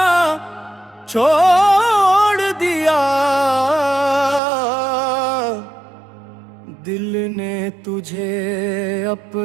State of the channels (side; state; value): left; drops out; at 4.4 s